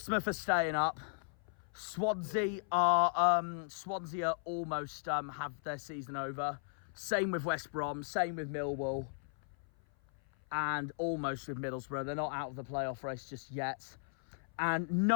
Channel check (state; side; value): silent; right; 53 dB below the other